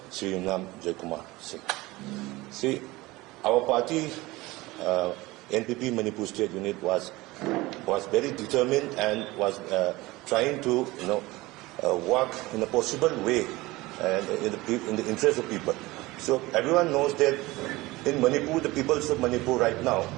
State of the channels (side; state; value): left; quieter; 20.3 dB